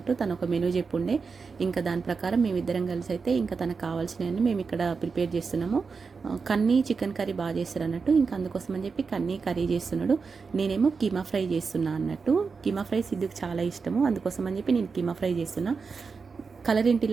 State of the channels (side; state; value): left; quieter; 5.0 dB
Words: తను ఒక మెనూ చెప్పుండే, ఇంకా దాని ప్రకారం మేమిద్దరం కలిసి అయితే ఇంకా తనకు కావాల్సినవన్నీ మేము ఇక్కడ ప్రిపేర్ చేస్తున్నాము. కన్నీ చికెన్ కర్రీ బాగా చేస్తారు అన్నట్టు. ఇంకా అందుకోసం అని చెప్పి కన్నీ కర్రీ చేస్తున్నాడు, నేనేమో కీమా ఫ్రై చేస్తున్నా అన్నట్టు. కీమా ఫ్రై సిద్ధుకు చాలా ఇష్టము, అందుకోసం అని చెప్పి నేను కీమా ఫ్రై చేస్తున్నా. కలర్ ఏంటి